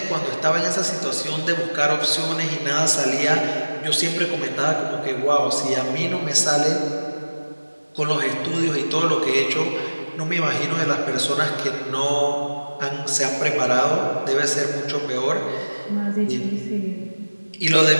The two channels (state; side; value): inverted; both; correlation -1.00